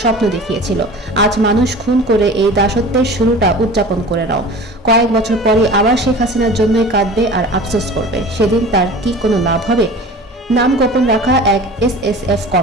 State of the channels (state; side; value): normal; both; correlation 0.39